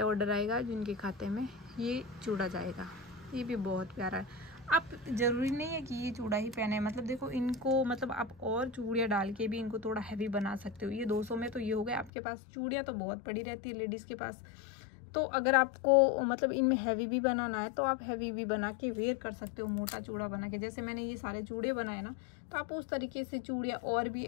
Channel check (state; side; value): drops out; right; at 12.1 s